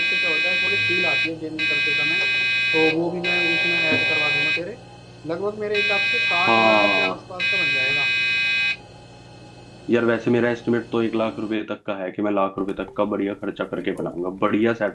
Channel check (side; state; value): both; identical; correlation 1.00